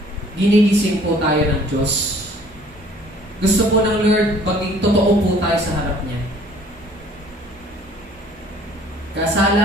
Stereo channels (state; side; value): normal; both; correlation 0.55